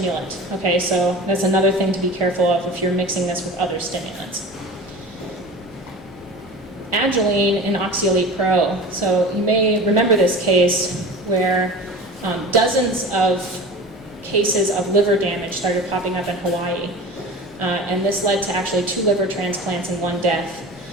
okay, so that's another thing to be careful of if you're mixing this with other stimulants. Agilene and Oxyelite Pro, so you may remember this case where dozens of cases of liver damage started popping up in Hawaii, and this led to actually 2 liver transplants and 1 death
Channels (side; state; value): both; normal; correlation 0.35